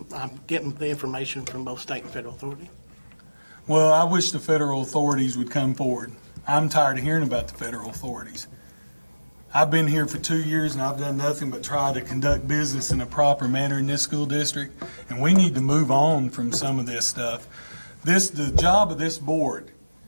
I'm getting the information from both state and federal authority. Well, I wish the federal authorities would come forward. I'm tired of hearing about the federal authorities. I've been here for 2 years and I've done nothing but try to conduct business in a proper manner in this school district, and we need to move on from some of this stuff. The job of this board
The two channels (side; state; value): both; inverted; correlation -1.00